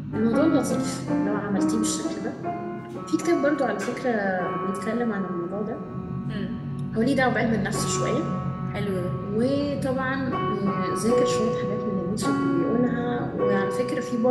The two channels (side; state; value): both; identical; correlation 1.00